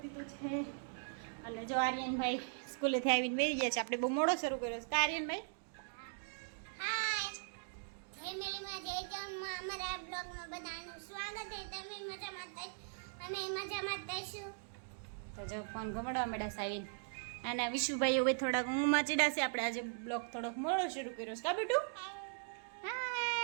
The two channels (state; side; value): silent; left; digital silence